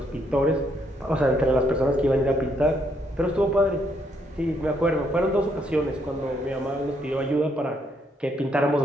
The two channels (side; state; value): both; normal; correlation 0.73